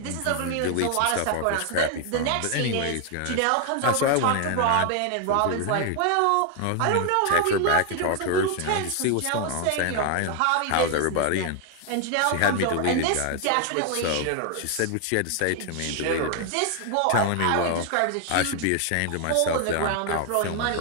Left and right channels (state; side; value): different; both; correlation 0.00